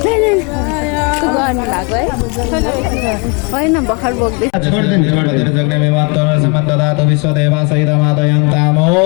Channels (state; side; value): quieter; right; 32.5 dB